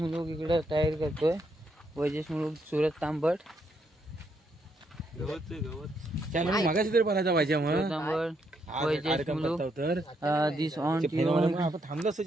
इकडं तयारी करतोय. वैजेश मुलूक, सूरज तांबट, मागाशी तरी बनायचा पाहिजे मग तांबट, वैजेश मुलूक, दिस ऑन थांबलं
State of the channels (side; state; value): both; normal; correlation 0.76